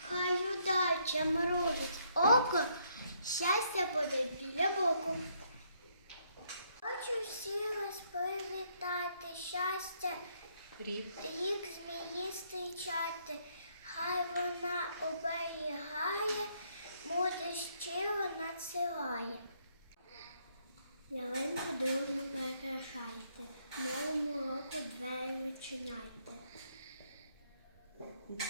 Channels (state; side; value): inverted; both; correlation -0.71